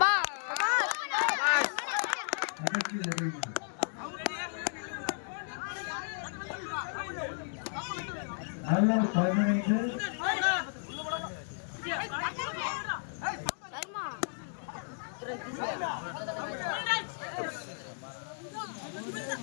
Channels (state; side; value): silent; right; digital silence